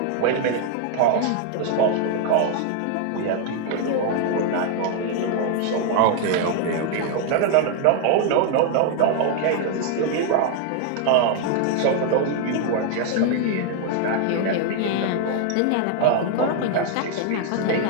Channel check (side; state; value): both; different; correlation 0.00